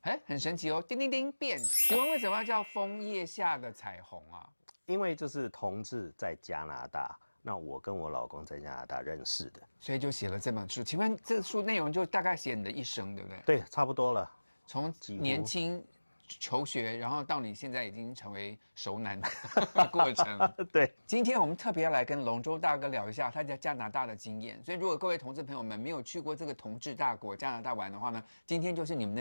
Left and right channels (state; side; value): inverted; both; correlation -1.00